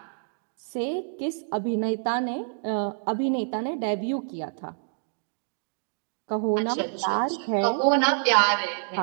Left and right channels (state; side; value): silent; left; digital silence